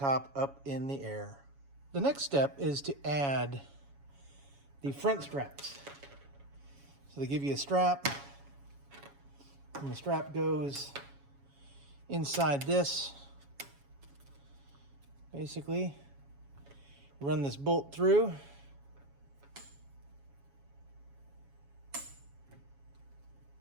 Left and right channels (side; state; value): left; late; 7.2 ms